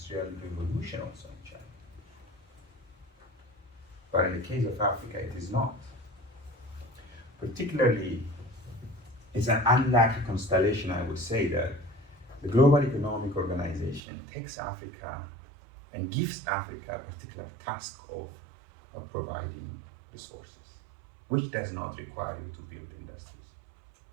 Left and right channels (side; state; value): left; drops out; at 14.0 s